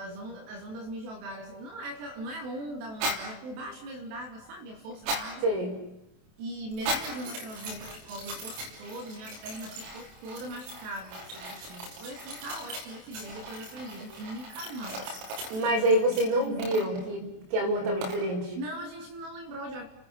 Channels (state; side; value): late; left; 27 ms